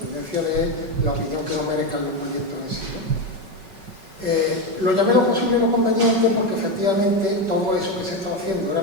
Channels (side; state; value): left; late; 5.3 ms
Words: de la opinión que nos merezcan los proyectos en sí, ¿no? Lo llamé lo posible y lo conveniente porque efectivamente todo eso que se estaba haciendo era